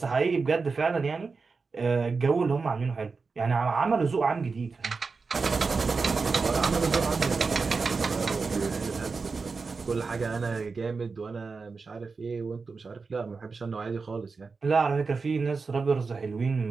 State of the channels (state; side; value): quieter; left; 4.6 dB